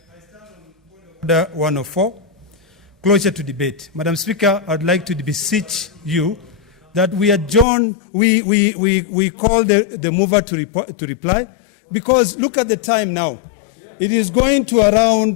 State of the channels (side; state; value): right; drops out; at 7.7 s